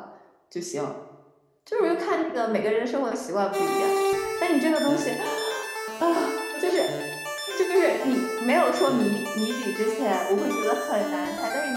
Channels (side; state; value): both; identical; correlation 1.00